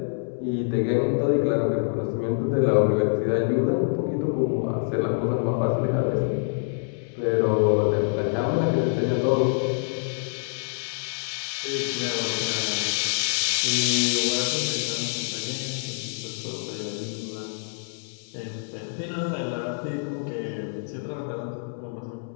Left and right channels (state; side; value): silent; right; 61 dB below the other